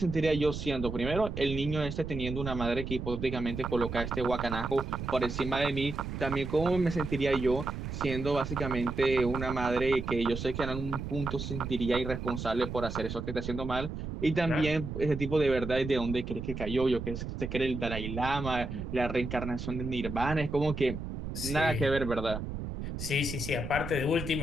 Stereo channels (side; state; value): right; noise; rumble, 6 dB below the sound